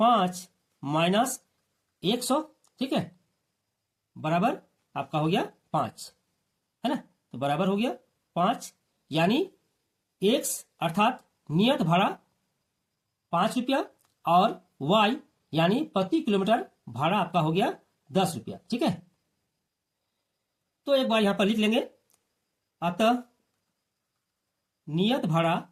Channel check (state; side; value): identical; both; correlation 1.00